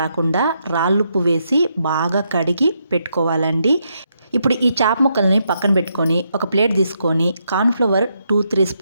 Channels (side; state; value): both; inverted; correlation -0.79